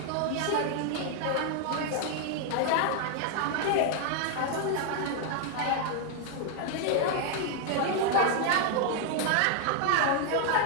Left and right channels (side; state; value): both; different; correlation 0.00